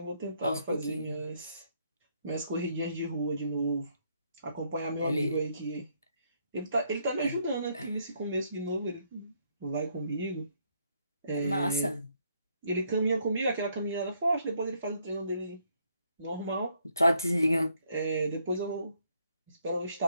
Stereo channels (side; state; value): both; inverted; correlation -0.71